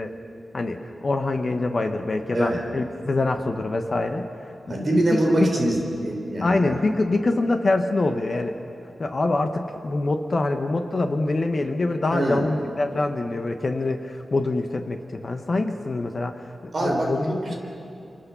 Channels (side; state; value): both; normal; correlation 0.94